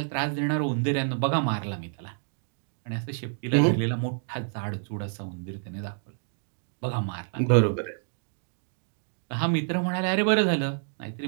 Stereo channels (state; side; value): silent; left; digital silence